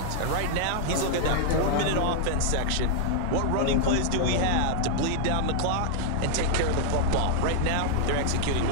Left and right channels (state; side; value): different; both; correlation -0.01